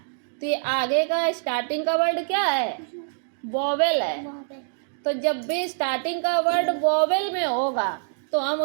तो ये आगे का स्टार्टिंग का वर्ड क्या है? वोवेल है। तो जब भी स्टार्टिंग का वर्ड वोवेल में होगा तो हम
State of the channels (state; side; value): silent; left; digital silence